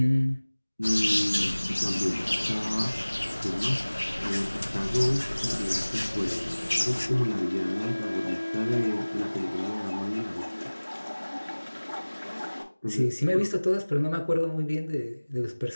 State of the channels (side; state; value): both; inverted; correlation -1.00